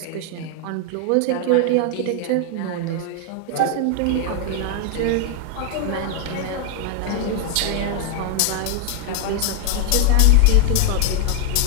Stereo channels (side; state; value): both; different; correlation 0.00